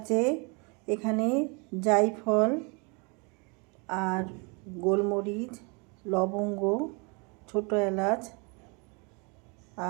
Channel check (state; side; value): quieter; left; 32.0 dB